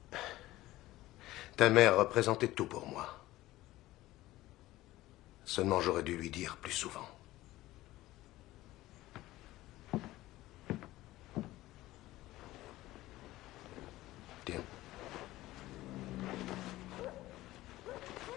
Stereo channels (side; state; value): right; quieter; 16.8 dB